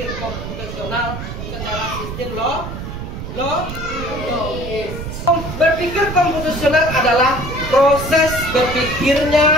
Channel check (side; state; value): right; noise; rumble, 7 dB below the sound